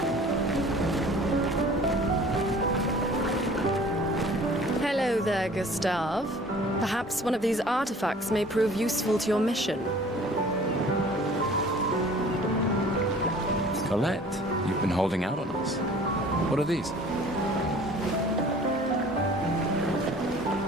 Hello there, Gustav. Perhaps one of these artifacts may prove useful to your mission. Colette, you've been holding out on us. What are these?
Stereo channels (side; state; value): both; normal; correlation 0.49